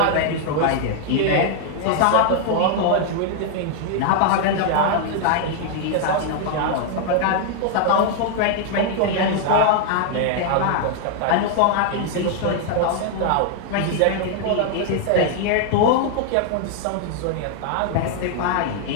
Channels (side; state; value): both; different; correlation 0.00